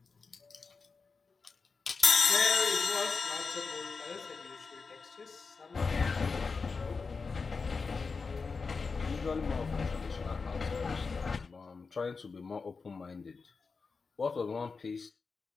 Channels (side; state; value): right; quieter; 4.7 dB